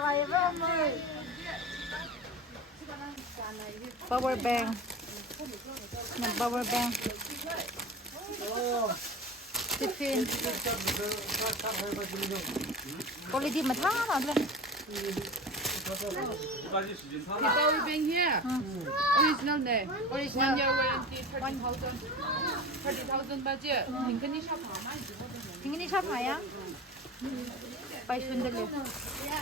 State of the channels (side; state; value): both; normal; correlation 0.32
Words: vậy với ông ơi power bank nè power bank tiffin quality mà thả nào lên The power bank here. Original ne. Original year warranty 30,000 budget. Tingani shop hama. tingini shop haya pai sunderle